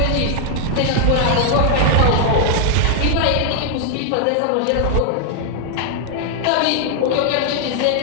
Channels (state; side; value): different; both; correlation 0.00